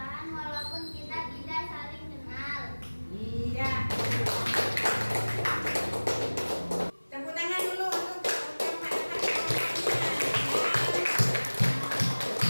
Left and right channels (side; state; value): both; inverted; correlation -1.00